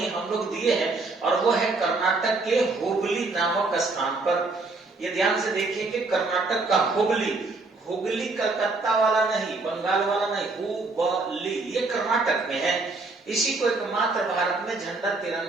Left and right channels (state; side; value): quieter; left; 3.6 dB